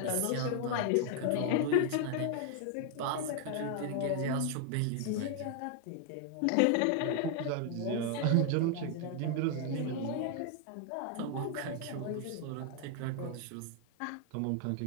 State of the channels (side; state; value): both; different; correlation 0.00